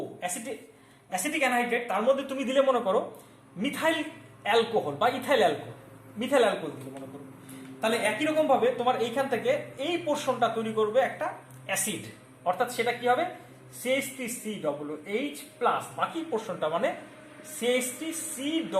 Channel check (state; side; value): identical; both; correlation 1.00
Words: অ্যাসিটিক অ্যানহাইড্রেট, তার মধ্যে তুমি দিলে মনে করো মিথাইল অ্যালকোহল বা ইথাইল অ্যালকোহল দিলে মনে করো, তাহলে একই রকম ভাবে তোমার এইখান থেকে এই পোর্শনটা তৈরি করবে একটা অ্যাসিড, অর্থাৎ সেটা কি হবে CH3COOH প্লাস বাকি পোর্শনটা মানে